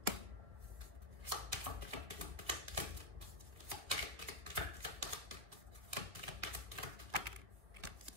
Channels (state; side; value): late; left; 2.0 ms